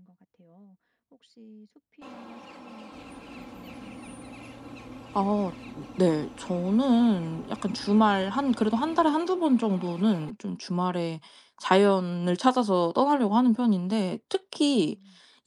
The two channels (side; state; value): both; identical; correlation 1.00